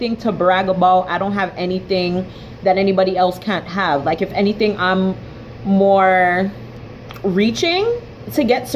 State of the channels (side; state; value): both; identical; correlation 1.00